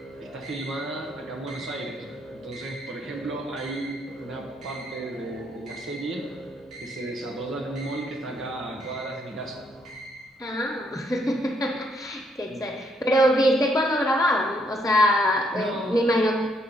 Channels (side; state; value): both; normal; correlation 0.72